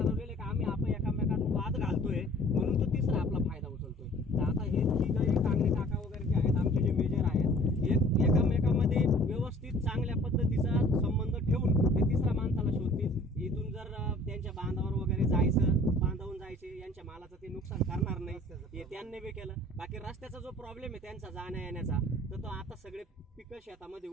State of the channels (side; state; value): both; normal; correlation 0.51